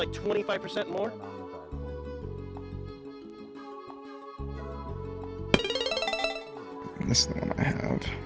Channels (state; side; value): identical; both; correlation 1.00